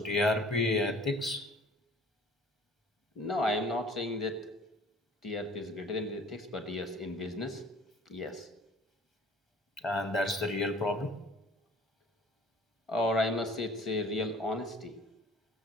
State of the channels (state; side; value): normal; both; correlation 0.51